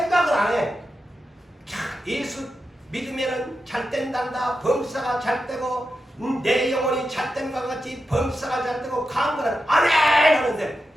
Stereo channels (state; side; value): normal; both; correlation 0.89